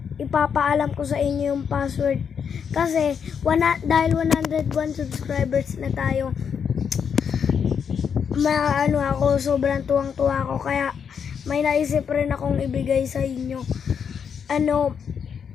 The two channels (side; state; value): right; quieter; 7.1 dB